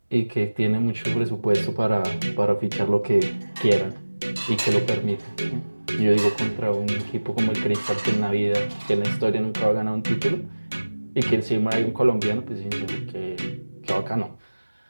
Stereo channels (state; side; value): inverted; both; correlation -1.00